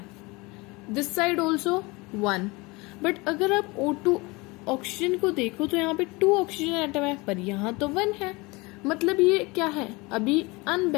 This side also 1. बट अगर आप O2 ऑक्सीजन को देखो तो यहाँ पे 2 ऑक्सीजन एटम है, पर यहाँ तो 1 है. मतलब ये क्या है? अभी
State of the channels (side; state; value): right; quieter; 24.5 dB